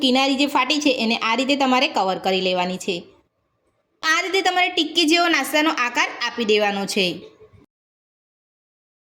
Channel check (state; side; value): identical; both; correlation 1.00